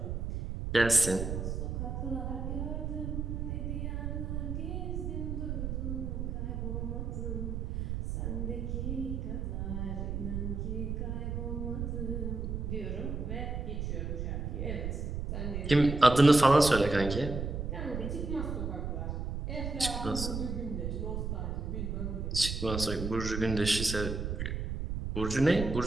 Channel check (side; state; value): right; noise; rumble, 3 dB below the sound